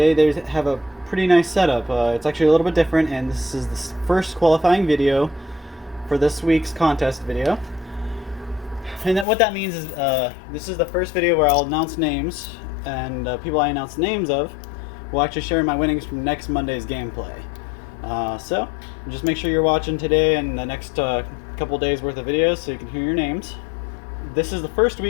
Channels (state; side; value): drops out; right; at 9.2 s